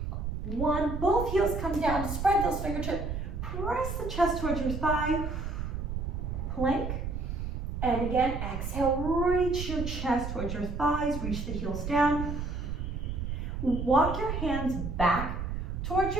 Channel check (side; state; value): right; noise; rumble, 4 dB below the sound